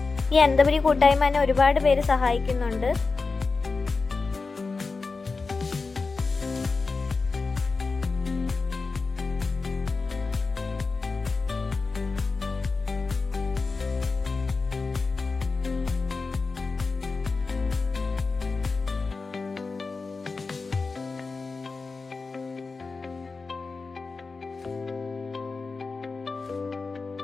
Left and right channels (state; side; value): quieter; right; 4.2 dB